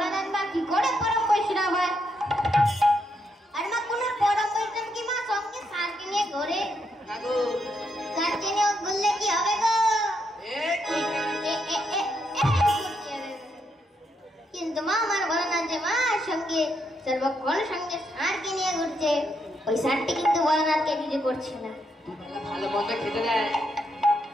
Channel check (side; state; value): both; normal; correlation 0.79